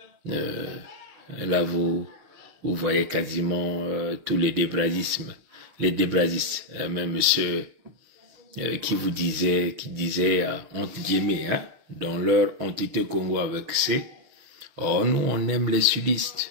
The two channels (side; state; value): left; late; 6.5 ms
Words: Là, vous voyez quasiment tous les débrasistes, même ceux qui disaient entre guillemets, hein, dans leur entité Congo avec C, oh nous on aime les